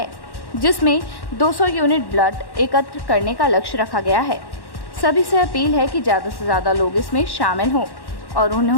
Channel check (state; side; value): late; right; 1.1 ms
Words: जिसमें 200 यूनिट ब्लड एकत्र करने का लक्ष्य रखा गया है। सभी से अपील है कि ज़्यादा से ज़्यादा लोग इसमें शामिल हों और